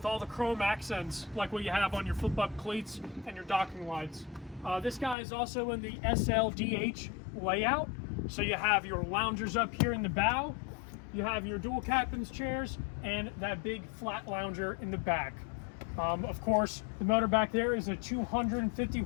all the chrome accents like what you have on your flip up cleats and your docking lights. This guy is also in the SLDH layout, so you have your loungers up here in the bow, you have your dual captain's chairs, and that big flat lounger in the back. Of course, the motor back there is a 250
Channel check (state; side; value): drops out; right; at 5.2 s